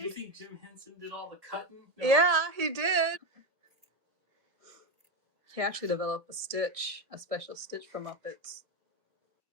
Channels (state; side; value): late; left; 1.6 ms